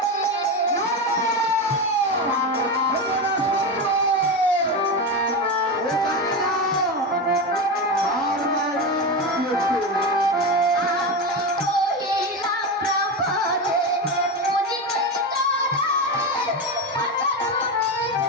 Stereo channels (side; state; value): both; normal; correlation 0.17